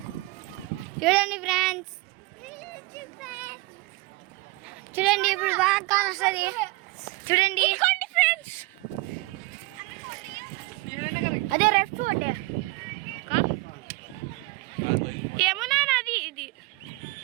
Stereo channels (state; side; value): quieter; left; 22.9 dB